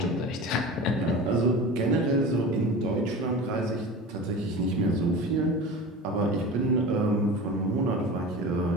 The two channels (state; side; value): normal; both; correlation 0.33